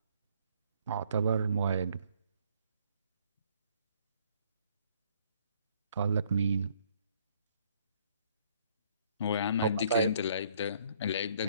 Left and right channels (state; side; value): inverted; both; correlation -0.64